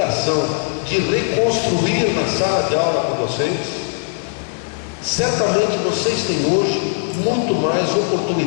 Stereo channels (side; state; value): right; silent; 67 dB below the other